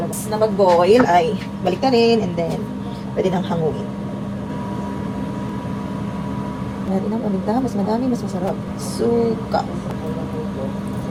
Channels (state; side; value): identical; both; correlation 1.00